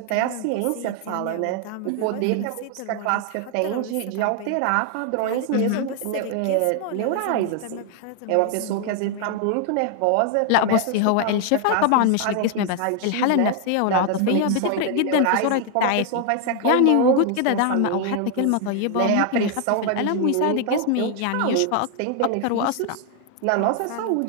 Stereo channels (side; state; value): both; different; correlation 0.00